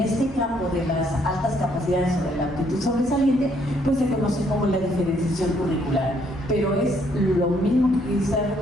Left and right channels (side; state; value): both; normal; correlation 0.68